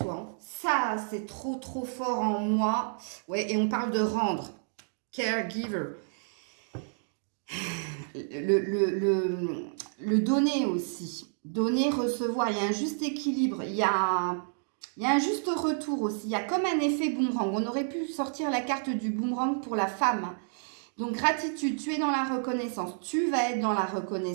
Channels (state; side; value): silent; left; digital silence